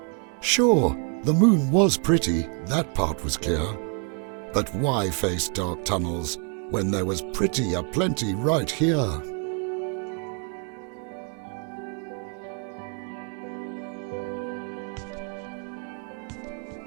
Sure, the moon was pretty, that part was clear. But why face dark tunnels when there was pretty aplenty right here?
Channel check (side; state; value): left; quieter; 38.7 dB